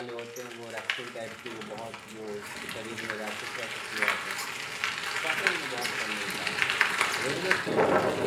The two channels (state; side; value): identical; both; correlation 1.00